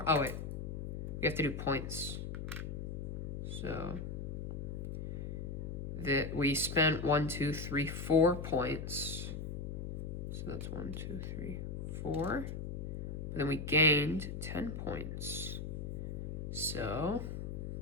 Oh wait, we have to do points. So that we spent 1, 2, 3, 4 points. So So that's 1, 2, 3, 4. But then we gained 10 points. So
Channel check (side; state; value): left; noise; hum, 5 dB below the sound